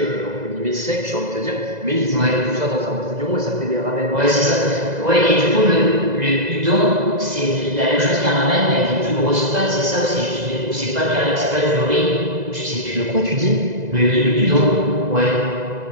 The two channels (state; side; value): late; left; 2.0 ms